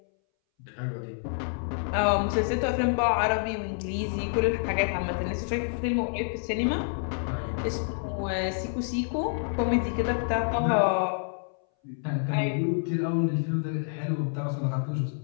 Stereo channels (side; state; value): right; silent; 59 dB below the other